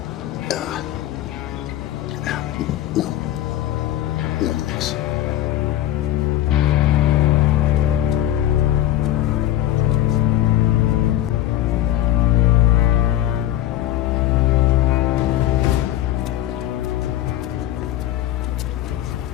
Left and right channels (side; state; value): right; quieter; 13.3 dB